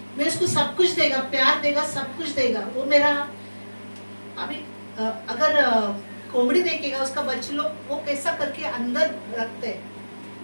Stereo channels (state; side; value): inverted; both; correlation -1.00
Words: मैं उसको सब कुछ देगा, प्यार देगा, सब कुछ देगा। वो मेरा अभी अगर कोमड़ी देखेगा उसका बच्चे लोग वो कैसा करके अंदर रखते हैं,